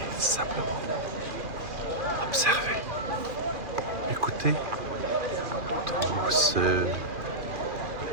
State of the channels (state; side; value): late; left; 2.4 ms